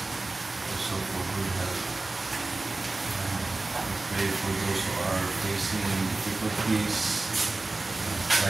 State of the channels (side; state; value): left; quieter; 3.2 dB